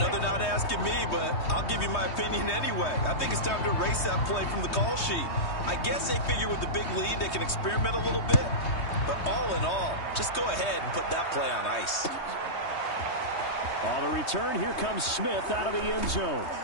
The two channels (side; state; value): right; late; 3.2 ms